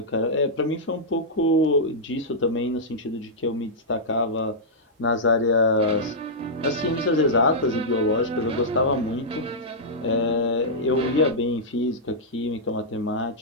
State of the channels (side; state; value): both; normal; correlation -0.10